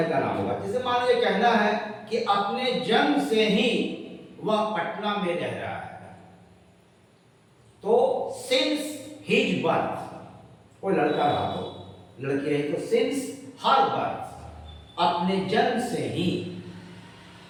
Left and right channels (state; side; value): identical; both; correlation 1.00